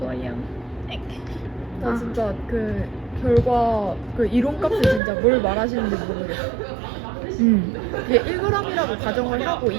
나 진짜 그 결과 그 이론값을 진짜 뭘 말하시는지 모르겠어. 이게 1g이라고 가정을 하고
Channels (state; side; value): drops out; left; at 5.0 s